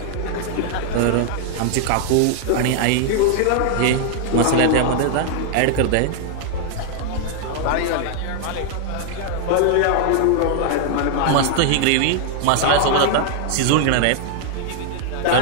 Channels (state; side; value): different; both; correlation 0.00